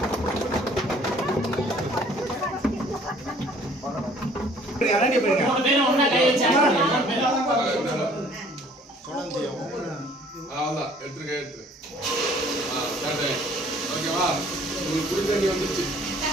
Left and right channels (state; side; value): normal; both; correlation 0.56